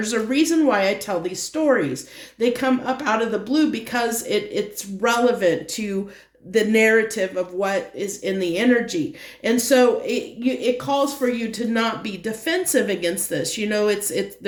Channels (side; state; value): both; identical; correlation 1.00